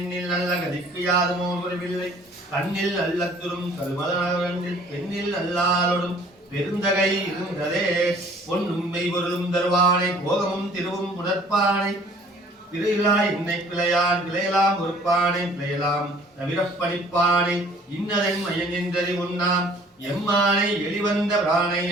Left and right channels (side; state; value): both; normal; correlation 0.54